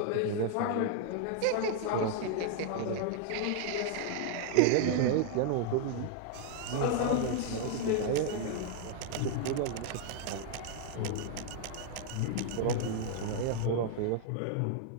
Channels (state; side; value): different; both; correlation 0.00